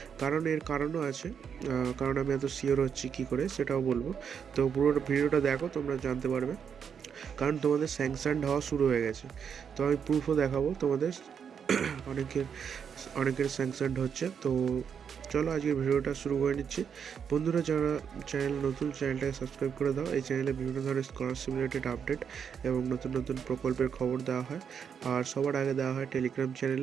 কারণ এর কারণও আছে, কারণ আমি এত শিওর হচ্ছি কী করে সেটাও বলবো। তো পুরো ভিডিওটা দেখো, তোমরা জানতে পারবে। কারণ তোমাদের স্যাংশনড হওয়া শুরু হয়ে গেছে, তো আমি প্রুফও দেখাবো তোমাদের। অনেকের স্যাংশনড হচ্ছে। তো চলো আজকের ভিডিওটা শুরু করে নিচ্ছি। বন্ধুরা, যারা চ্যানেল নতুন, চ্যানেলটাকে সাবস্ক্রাইব করে দাও। এই চ্যানেলে বিভিন্ন ধরনের স্কলারশিপ রিলেটেড আপডেট এবং নতুন নতুন প্রকল্পের খবর দেওয়া হয়, আর সবার আগে দেওয়া হয় টেলিগ্রাম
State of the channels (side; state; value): left; quieter; 7.3 dB